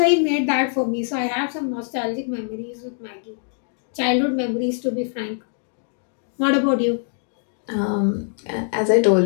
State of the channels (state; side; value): silent; right; 56 dB below the other